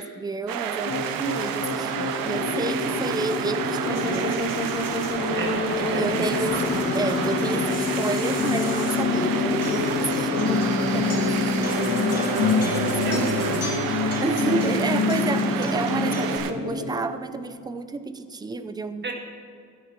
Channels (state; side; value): normal; both; correlation 0.34